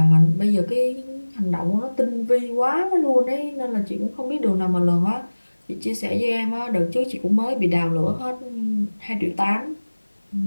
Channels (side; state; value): both; inverted; correlation -1.00